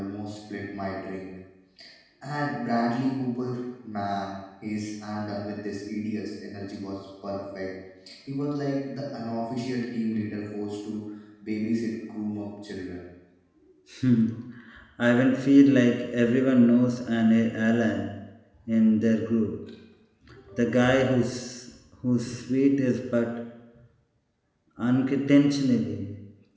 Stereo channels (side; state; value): both; identical; correlation 1.00